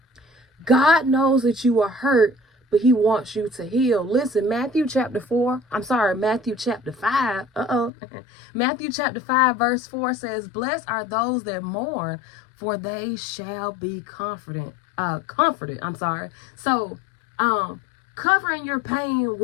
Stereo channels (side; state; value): right; drops out; at 7.9 s